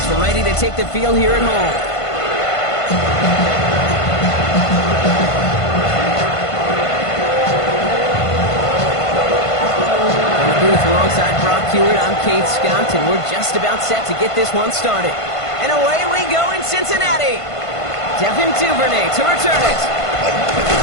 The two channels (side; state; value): right; late; 1.5 ms